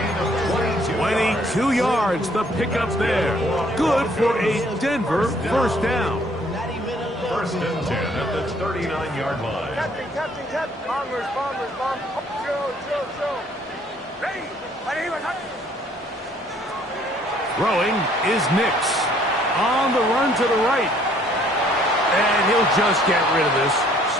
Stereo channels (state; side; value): normal; both; correlation 0.62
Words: of 22 yards, the pickup there. Good for a Denver 1st down. 1st and 10 at the 39-yard line. Captain. Bombers. Joe. Ready. Throwing is Nix. On the run to the right. And he'll just get rid of this.